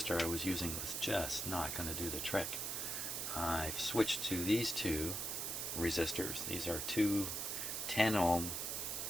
I was using was just not going to do the trick, I've switched to these two resistors. These are two 10 ohm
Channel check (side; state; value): right; noise; hiss, 2 dB below the sound